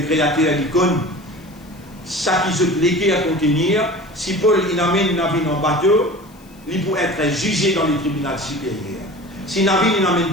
créateur l'icône, ça qui se légué à contenir, si Paul il amène une navire en bateau, il peut être jugé dans les tribunaux supérieurs. Si navire il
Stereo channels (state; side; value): noise; left; hiss, 28 dB below the sound